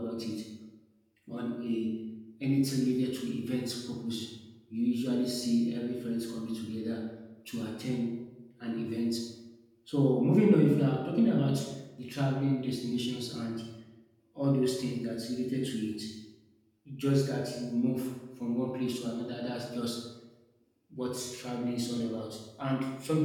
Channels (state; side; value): identical; both; correlation 1.00